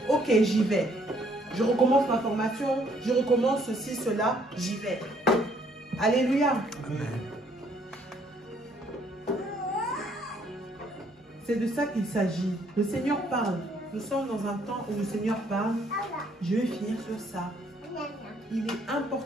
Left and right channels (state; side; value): normal; both; correlation 0.66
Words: Ok, j'y vais. Je recommence ma formation, je recommence ceci, cela, j'y vais. Alléluia. Amen. C'est de ça qu'il s'agit. Le Seigneur parle. Nous sommes dans un temps où le Seigneur parle. Je vais finir sur ça. Il est